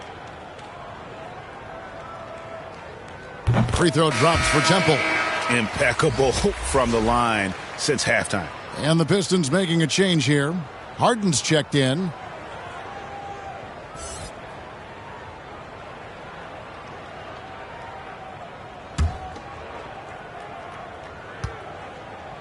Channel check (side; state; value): both; identical; correlation 1.00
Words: Free throw drops for Temple. Impeccable from the line since halftime. And the Pistons making a change here. Harden's checked in.